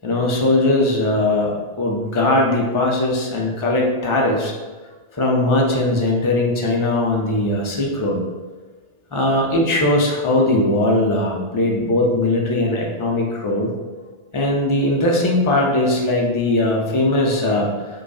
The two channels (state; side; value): late; left; 1.4 ms